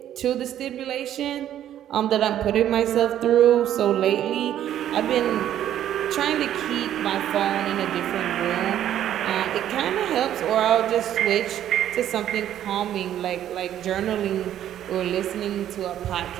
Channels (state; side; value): quieter; left; 11.2 dB